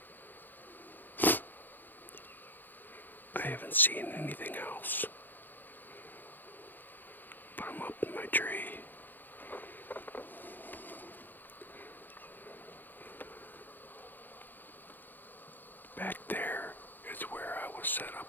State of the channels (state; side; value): late; right; 0.089 ms